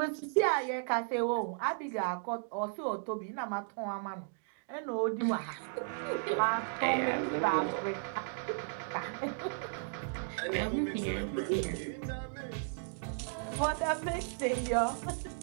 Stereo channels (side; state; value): left; silent; digital silence